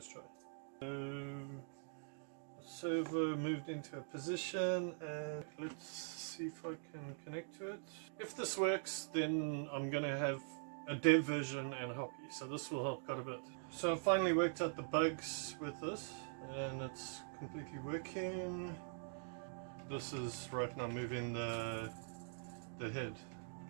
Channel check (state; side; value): silent; left; digital silence